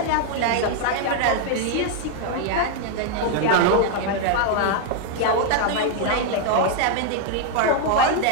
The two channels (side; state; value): both; different; correlation 0.00